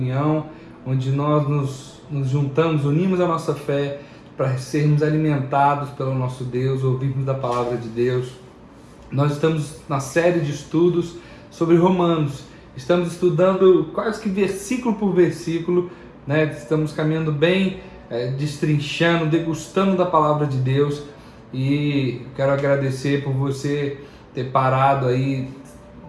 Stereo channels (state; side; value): identical; both; correlation 1.00